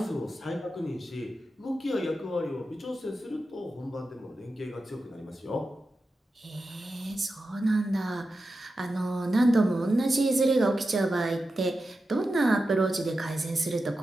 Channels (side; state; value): both; normal; correlation 0.91